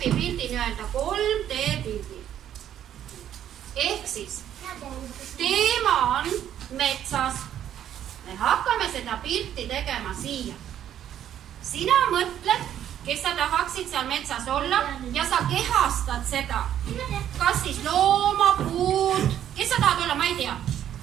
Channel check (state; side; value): quieter; left; 10.6 dB